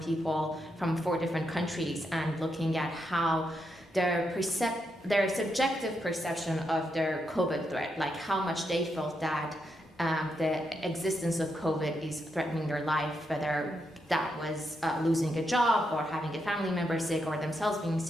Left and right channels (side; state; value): both; normal; correlation 0.82